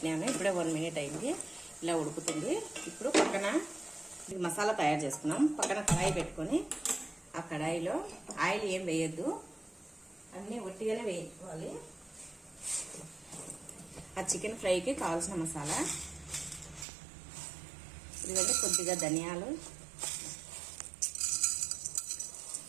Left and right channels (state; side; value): drops out; left; at 16.9 s